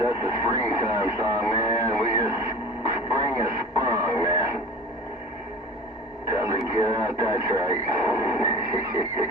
a springtime song, man. Spring is sprung, man. Time to get out that track.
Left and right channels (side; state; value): both; normal; correlation 0.36